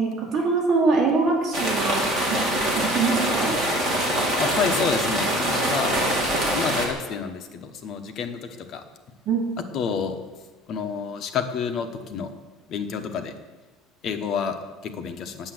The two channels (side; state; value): both; normal; correlation 0.47